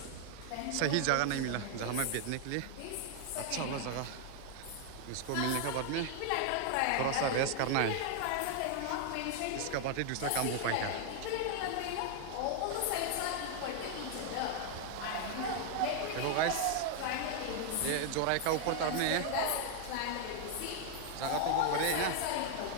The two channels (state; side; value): different; both; correlation 0.00